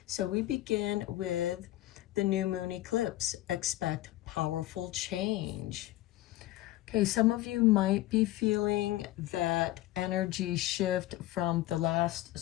So we begin with the new moon eclipse. Expect powerful change. Okay, some of you might be feeling that energy shift from the last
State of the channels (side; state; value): right; quieter; 16.0 dB